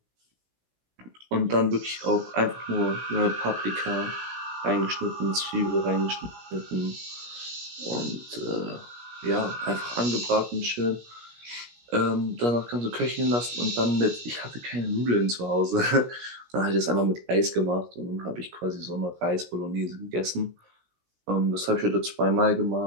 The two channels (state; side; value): late; left; 17 ms